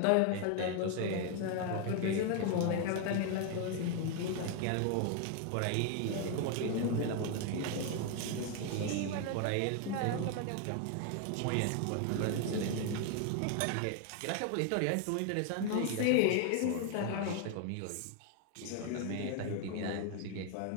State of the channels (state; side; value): different; both; correlation 0.01